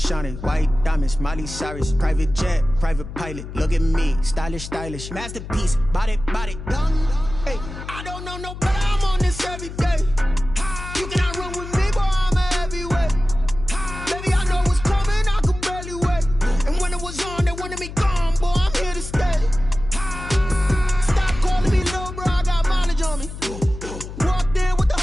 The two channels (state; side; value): noise; left; hum, 10 dB below the sound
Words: white diamonds, Miley Cyrus, private jet, private pilot. Look at me, stylish, masterpiece, body, done. Hey, I don't know no better. I'm on this every day. You cannot run with me, boy. I'm a heavyweight. Baby, I know what's coming. I could barely wait. And when it was on, they wanted me gone, boy. I'm here to stay. Stop calling me little bro. I got mileage on me. Walked in with the